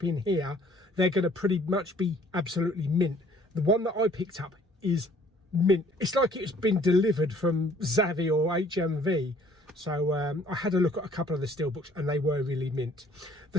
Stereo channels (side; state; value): both; normal; correlation 0.58